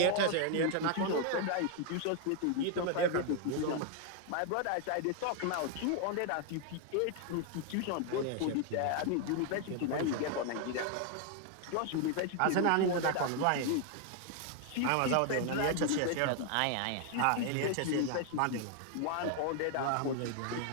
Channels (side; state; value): both; different; correlation 0.00